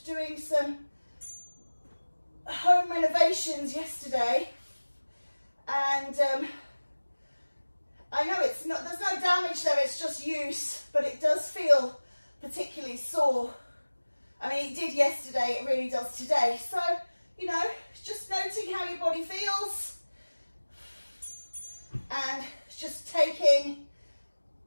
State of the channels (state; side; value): inverted; both; correlation -1.00